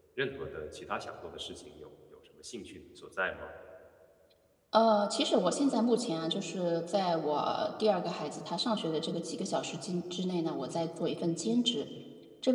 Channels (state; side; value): identical; both; correlation 1.00